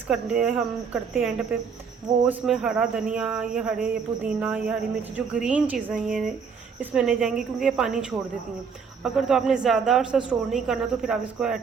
करते हैं हम करते हैं एंड पे, वो उसमें हरा धनिया, ये पुदीना, ये हरी मिर्च, जो ग्रीन चीज़ें ये इसमें नहीं जाएंगी क्योंकि ये पानी छोड़ देती हैं। अगर तो आपने ज़्यादा अर्सा स्टोर नहीं करना तो फिर आप इसको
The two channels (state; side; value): quieter; left; 6.0 dB